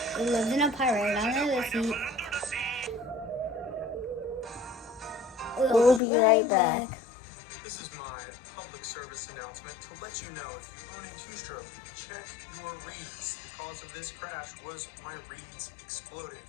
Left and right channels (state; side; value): drops out; right; at 6.0 s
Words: He lives in a pirate under the sea. We'll be right back. This is my public service announcement to let you know if you own a two-stroke, check your reeds. The cause of this crash was my reeds exploding.